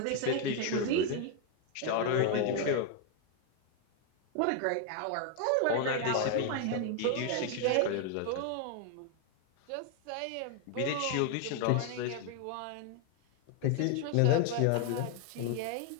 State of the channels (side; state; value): both; different; correlation 0.01